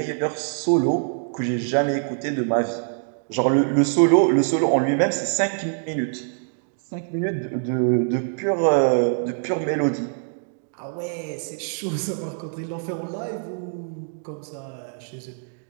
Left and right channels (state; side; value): silent; left; digital silence